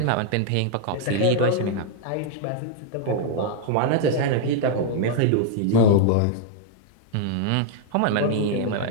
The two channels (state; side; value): different; both; correlation -0.01